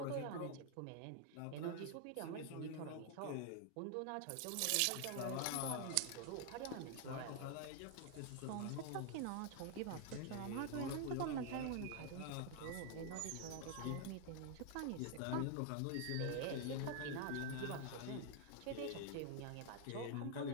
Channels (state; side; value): different; both; correlation 0.00